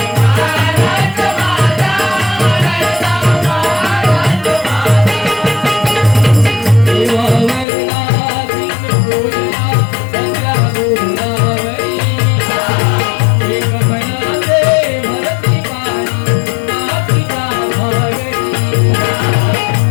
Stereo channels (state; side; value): drops out; right; at 7.7 s